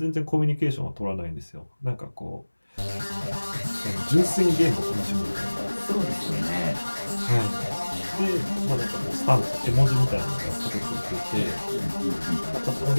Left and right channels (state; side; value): inverted; both; correlation -1.00